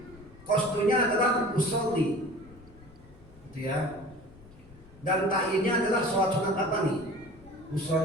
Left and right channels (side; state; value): left; noise; rumble, 22 dB below the sound